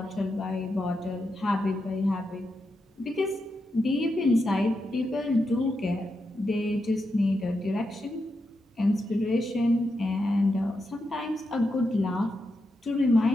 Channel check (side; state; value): both; normal; correlation 0.86